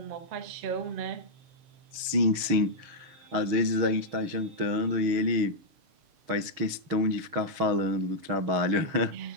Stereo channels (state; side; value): late; left; 6.4 ms